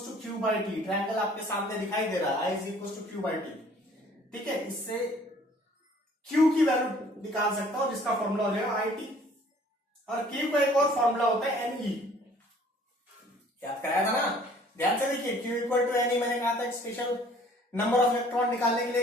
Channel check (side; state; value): both; normal; correlation 0.55